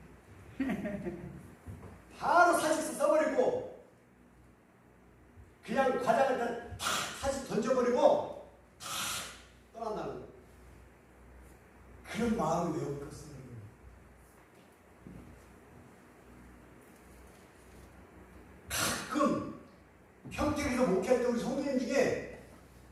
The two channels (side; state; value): both; identical; correlation 1.00